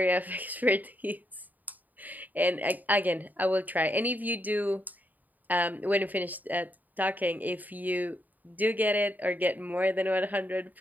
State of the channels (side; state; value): left; late; 0.083 ms